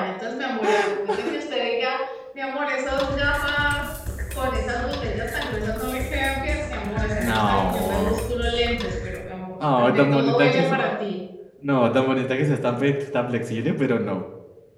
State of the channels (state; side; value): identical; both; correlation 1.00